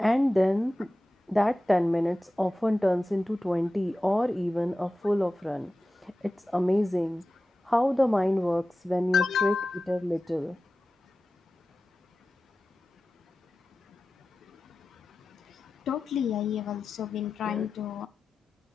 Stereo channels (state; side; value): normal; both; correlation 0.95